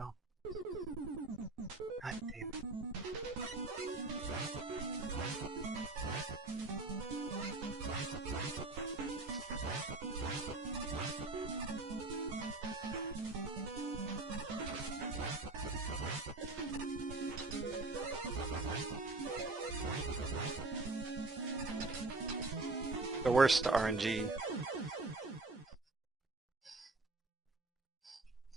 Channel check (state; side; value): quieter; left; 3.3 dB